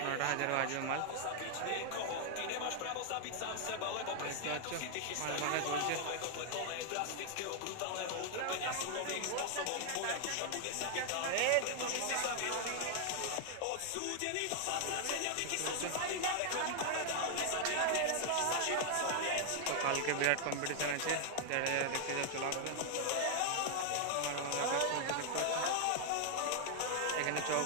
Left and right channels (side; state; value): both; different; correlation 0.00